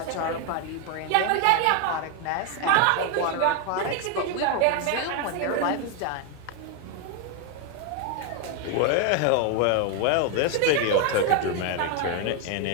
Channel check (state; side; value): different; both; correlation 0.01